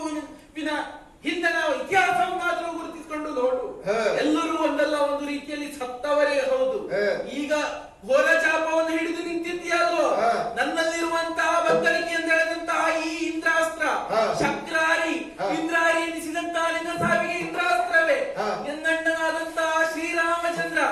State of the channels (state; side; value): identical; both; correlation 1.00